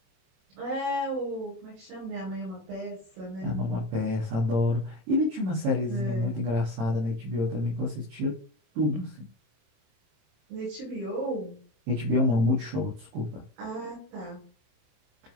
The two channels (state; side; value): late; left; 27 ms